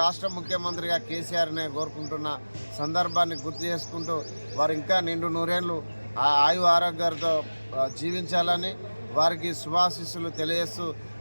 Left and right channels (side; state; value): both; inverted; correlation -1.00